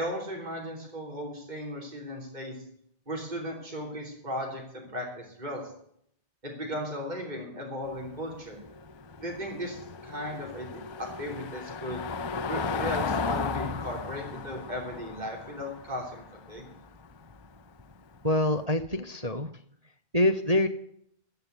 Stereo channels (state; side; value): late; left; 1.3 ms